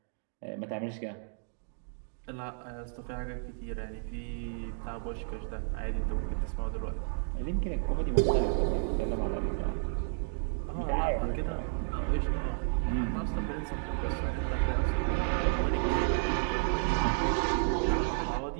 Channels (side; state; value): left; silent; digital silence